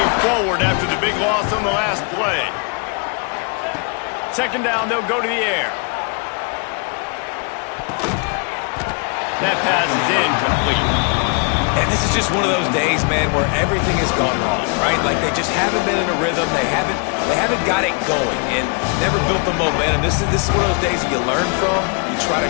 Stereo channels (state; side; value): quieter; right; 36.2 dB